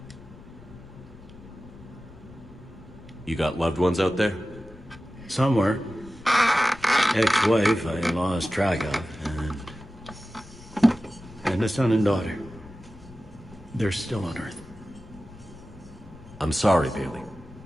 You got loved ones out there? Somewhere. Ex-wife I lost track of, and a son and daughter. They're still on Earth. I'm sorry, Bailey.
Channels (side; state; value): left; noise; rumble, 21 dB below the sound